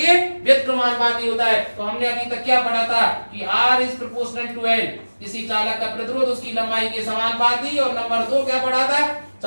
व्युत्क्रमानुपाती होता है। तो हमने अभी तक क्या पढ़ा था कि R is proportional to L। किसी चालक का प्रतिरोध उसकी लंबाई के समानुपाती, और नंबर 2 क्या पढ़ा था?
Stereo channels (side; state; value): both; inverted; correlation -1.00